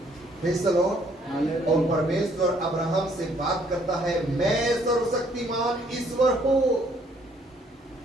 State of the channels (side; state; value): both; normal; correlation 0.64